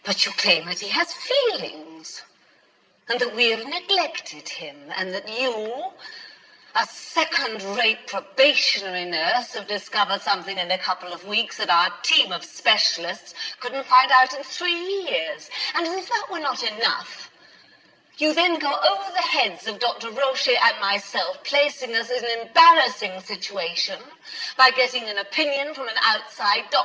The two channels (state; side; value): identical; both; correlation 1.00